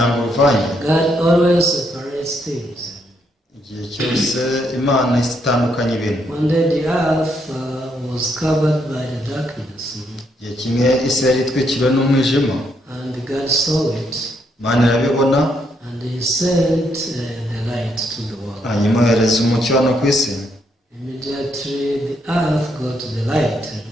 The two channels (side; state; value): both; normal; correlation 0.75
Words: uruvange. God always separates things. Igihe cyose Imana itandukanya ibintu. One day the earth was covered by the darkness. Igihe kimwe isi yari itwikiriwe n'umwijima, And God saw it. Imana irabibona, And He sent the light to the world. hanyuma yohereza umucyo hano ku isi. Immediately the earth got the light.